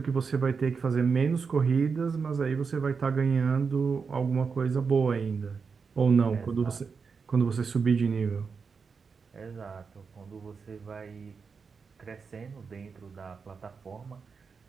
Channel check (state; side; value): quieter; left; 5.4 dB